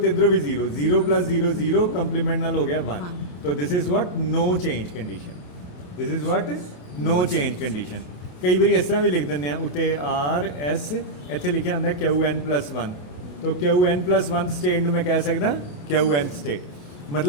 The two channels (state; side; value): late; right; 28 ms